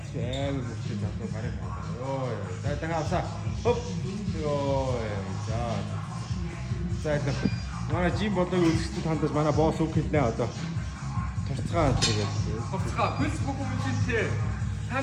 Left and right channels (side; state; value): both; identical; correlation 1.00